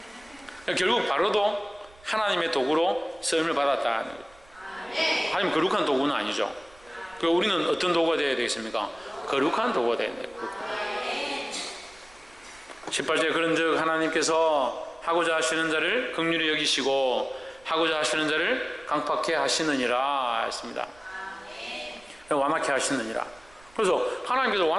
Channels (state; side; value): noise; right; rumble, 27 dB below the sound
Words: 결국 바로도 하나님의 도구로 쓰임을 받았다. 하지만 거룩한 도구는 아니죠. 우리는 어떤 도구가 되어야 되겠습니까? 거룩한 도구가 되어야 돼요. 18절에 그런즉 하나님께서 하고자 하시는 자를 긍휼히 여기시고 하고자 하시는 자를 강팍해 하시느니라 했습니다. 완악해 하시느니라. 그래서 하나님께서